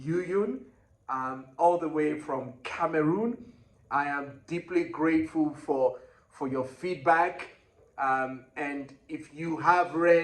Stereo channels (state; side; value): identical; both; correlation 1.00